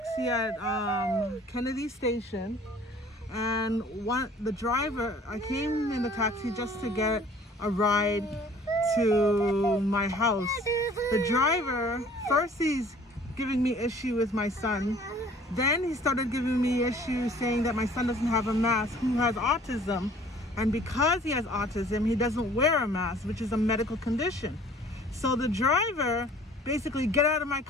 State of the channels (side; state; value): both; normal; correlation 0.52